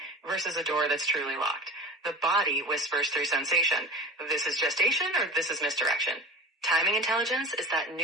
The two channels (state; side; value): normal; both; correlation 0.35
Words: versus a door that's truly locked. The body whispers through sensation. This is gestation or this is misdirection. Timing intelligence is that